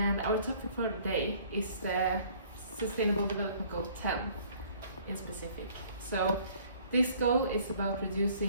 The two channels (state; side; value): inverted; both; correlation -0.56